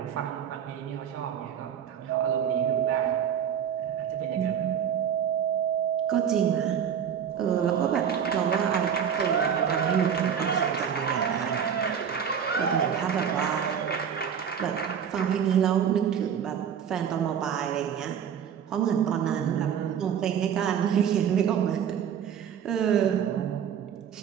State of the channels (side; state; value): left; quieter; 8.2 dB